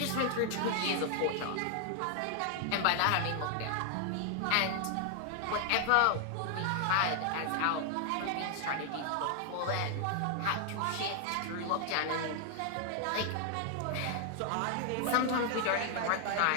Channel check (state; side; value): different; both; correlation 0.00